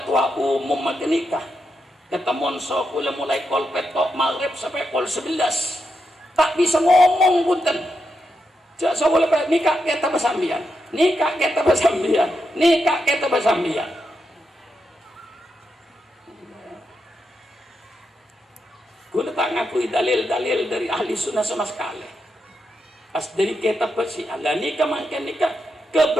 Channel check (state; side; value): normal; both; correlation 0.84